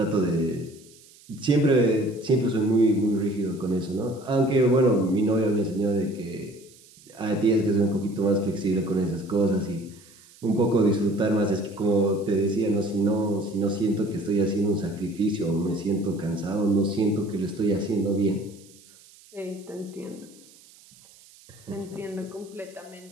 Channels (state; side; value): noise; right; hiss, 25 dB below the sound